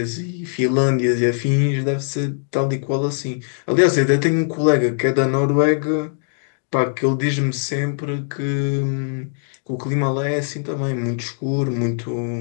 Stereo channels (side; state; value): right; silent; digital silence